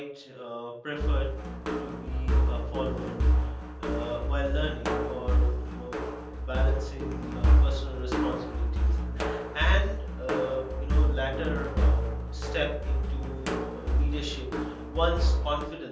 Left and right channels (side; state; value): both; identical; correlation 1.00